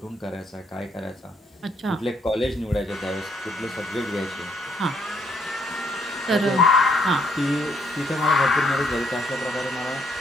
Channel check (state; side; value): normal; both; correlation 0.70